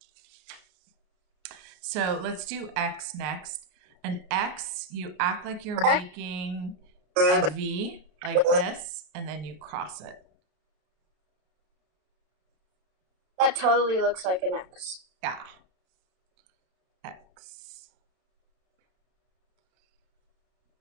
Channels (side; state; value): left; late; 33 ms